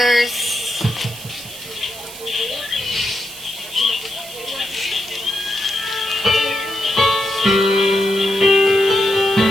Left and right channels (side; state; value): right; noise; hiss, 14 dB below the sound